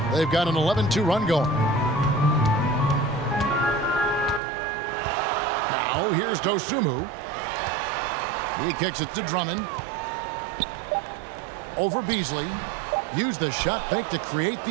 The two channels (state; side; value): drops out; left; at 4.4 s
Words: They've got an 11-2 run going. Now here's Dosunmu. He kicks it to Drummond. Over Beasley. Used the shot fake to create